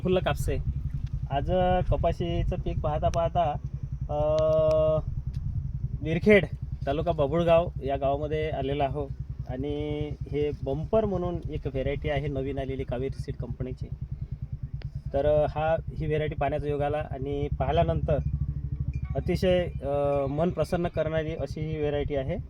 कापसे. आज कपाशीचं पीक पाहता पाहता विरखेड तालुका बाभुळगाव या गावामध्ये आलेला आहो. आणि हे बंपर म्हणून एक व्हेरायटी आहे नवीन आलेली कावेरी सीड कंपनीची. तर ही व्हेरायटी पाहण्याचा योग आला आणि पाहिल्यानंतर अतिशय मन प्रसन्न करणारी अशी ही व्हेरायटी आहे.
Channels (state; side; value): identical; both; correlation 1.00